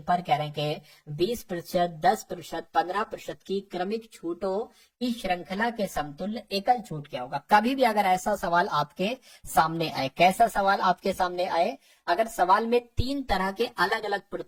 पर कह रहे हैं कि 20%, 10%, 15% की क्रमिक छूटों की श्रृंखला के समतुल्य एकल छूट क्या होगा। कभी भी अगर ऐसा सवाल आपके सामने आए, कैसा सवाल आपके सामने आए, अगर सवाल में 3 तरह के अलग अलग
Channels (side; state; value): both; identical; correlation 1.00